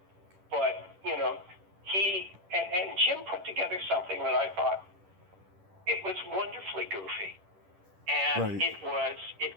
But, he and Jim put together something that I thought it was wonderfully goofy. And it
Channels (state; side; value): late; left; 10 ms